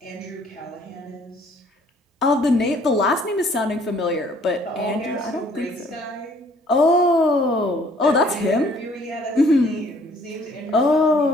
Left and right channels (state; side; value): normal; both; correlation 0.59